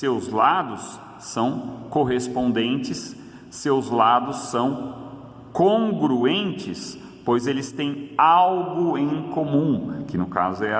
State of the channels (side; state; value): both; identical; correlation 1.00